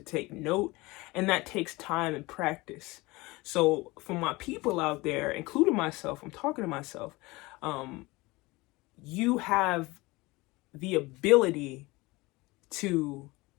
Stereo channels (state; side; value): quieter; right; 22.3 dB